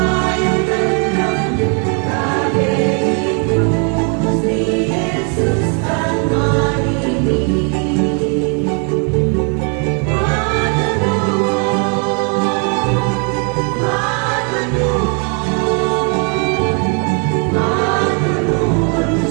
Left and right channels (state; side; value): quieter; left; 38.4 dB